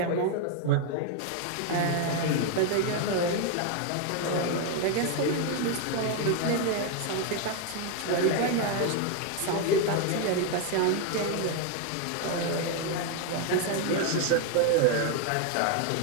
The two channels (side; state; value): both; different; correlation 0.01